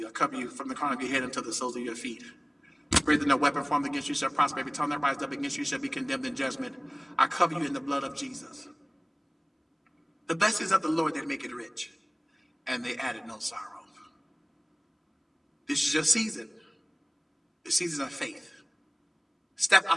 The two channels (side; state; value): both; identical; correlation 1.00